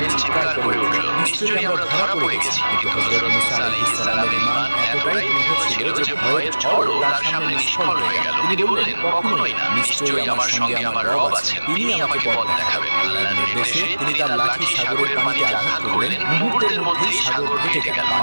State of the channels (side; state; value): both; inverted; correlation -1.00